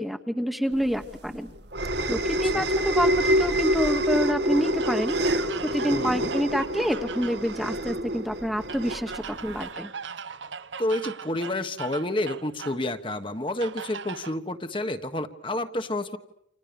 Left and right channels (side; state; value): both; normal; correlation 0.56